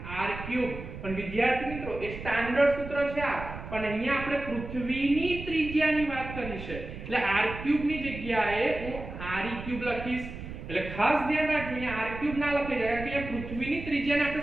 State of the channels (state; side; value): noise; right; rumble, 10 dB below the sound